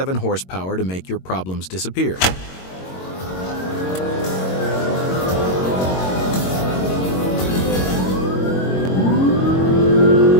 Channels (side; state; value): right; late; 22 ms